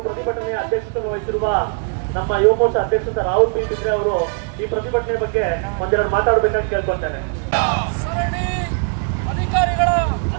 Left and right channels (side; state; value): left; quieter; 39.3 dB